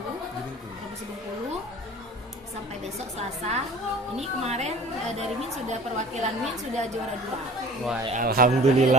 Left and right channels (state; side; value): normal; both; correlation 0.44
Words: Provinsi Bengkulu. Sampai besok Selasa. Ini kemarin dari Min sudah perwakilan Min sudah juara 2. Wah,